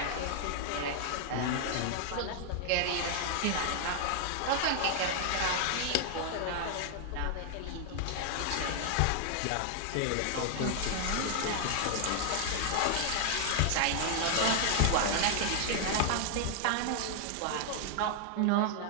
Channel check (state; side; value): different; both; correlation 0.00